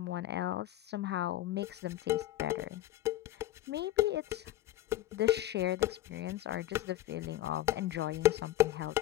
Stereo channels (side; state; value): right; quieter; 14.8 dB